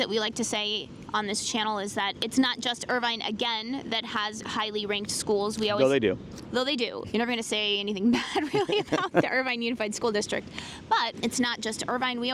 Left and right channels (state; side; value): identical; both; correlation 1.00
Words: we like to say on this channel is that it's not just Irvine, again, that has highly ranked schools. Though they do. Though they do. You're never going to say anything bad, really, about the Irvine Unified School District. But it's not just Irvine. We